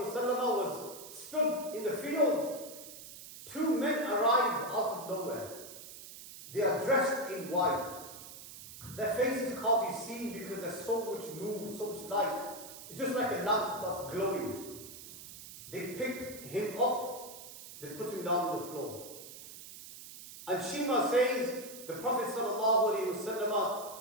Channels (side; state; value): right; noise; hiss, 14 dB below the sound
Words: was stood in the field. 2 men arrive out of nowhere. They are dressed in white. Their faces can't be seen because there's so much moon, so much light. It's just like a lamp that's glowing. They pick him up, they put him down on the floor. And Shima says, the Prophet ﷺ